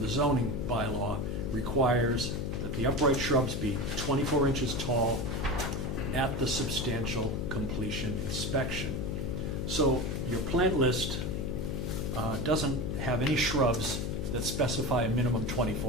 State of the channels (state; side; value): noise; left; hum, 2 dB below the sound